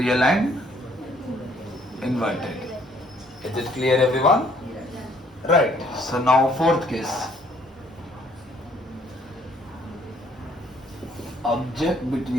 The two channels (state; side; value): normal; both; correlation 0.63